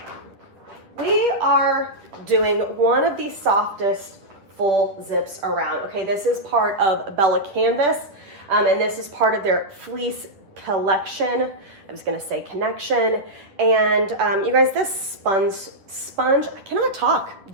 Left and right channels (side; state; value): left; late; 10 ms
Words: we are doing one of the softest full zips around. Okay, this is part of Bella Canvas, and this is part of their fleece collection. I was gonna say connection. And you guys, this sponge, I cannot talk,